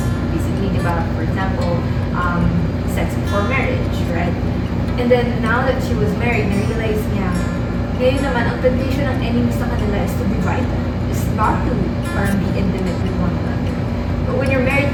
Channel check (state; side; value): identical; both; correlation 1.00